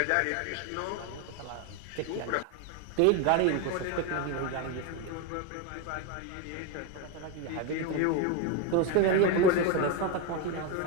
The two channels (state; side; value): different; both; correlation 0.02